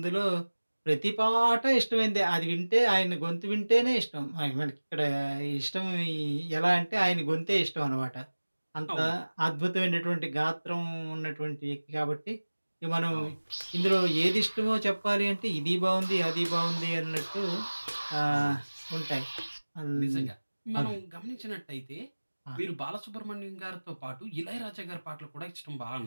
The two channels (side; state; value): both; inverted; correlation -1.00